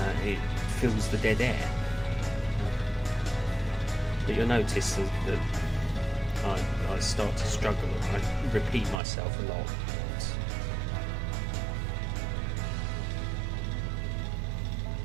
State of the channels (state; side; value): drops out; left; at 9.0 s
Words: it fills the dead air. But you'll notice that I start to struggle and I repeat myself a lot.